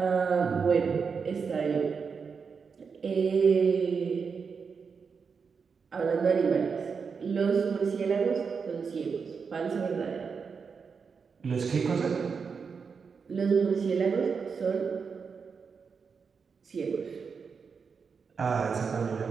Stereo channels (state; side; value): quieter; left; 5.7 dB